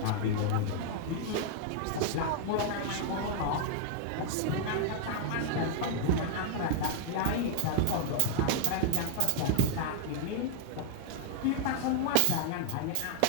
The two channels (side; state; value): both; different; correlation -0.01